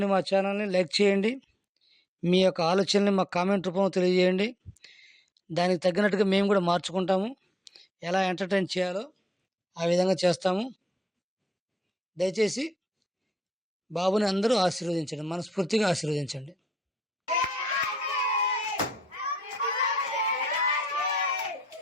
మా ఛానల్ని లైక్ చేయండి, మీ యొక్క ఆలోచనని మా కామెంట్ రూపంలో తెలియజేయండి. దానికి తగ్గినట్టుగా మేము కూడా మార్చుకుంటాము. ఎలా ఎంటర్టైన్ చేయాలో ఆ విధంగా చేస్తాము. దయచేసి బాబుని అందరూ ఆశీర్వదించండి, మనస్ఫూర్తిగా ఆశీర్వదించండి.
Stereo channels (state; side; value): normal; both; correlation 0.79